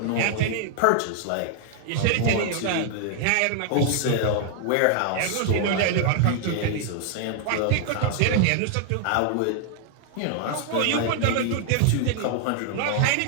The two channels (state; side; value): different; both; correlation 0.00